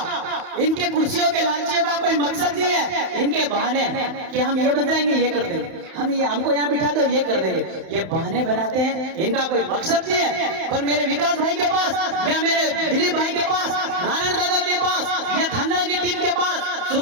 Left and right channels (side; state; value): left; late; 31 ms